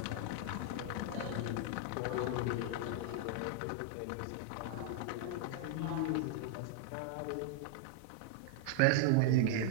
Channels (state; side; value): different; both; correlation 0.00